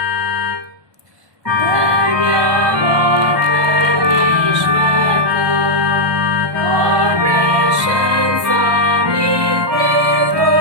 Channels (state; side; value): late; left; 1.2 ms